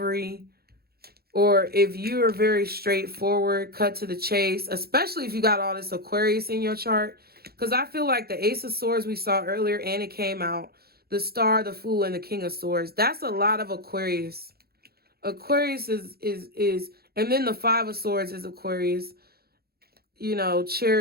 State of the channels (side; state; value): left; late; 0.45 ms